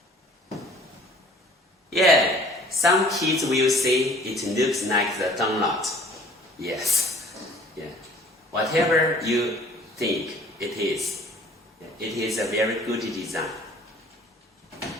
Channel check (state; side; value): normal; both; correlation 0.52